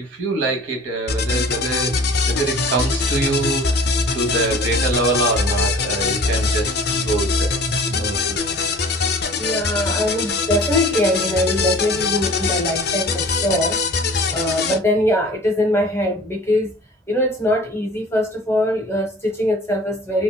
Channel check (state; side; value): normal; both; correlation 0.46